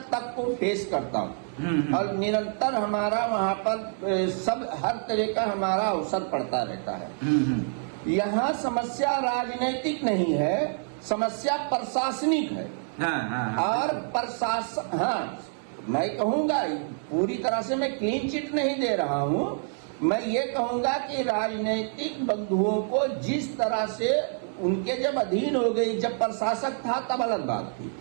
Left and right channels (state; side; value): silent; left; 60 dB below the other